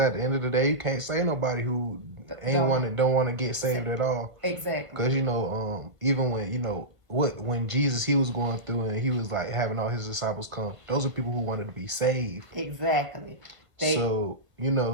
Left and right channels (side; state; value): left; late; 1.4 ms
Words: the end of the day, you can't say nobody who don't want to get saved at all. Exactly. Because even when when Jesus he was going through and he was like having all his disciples come, those are people who wanted to be saved. Exactly. So